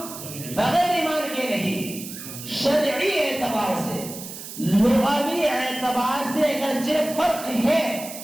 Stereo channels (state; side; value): noise; right; hiss, 11 dB below the sound